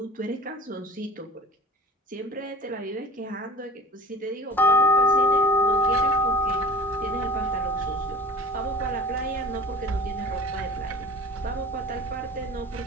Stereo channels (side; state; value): both; normal; correlation 0.41